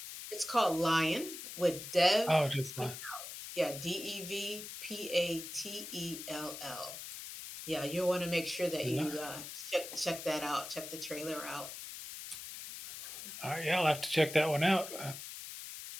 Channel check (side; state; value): left; noise; hiss, 10 dB below the sound